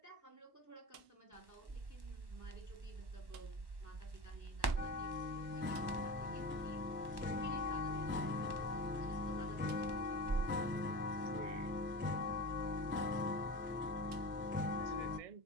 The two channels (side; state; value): left; late; 1.1 ms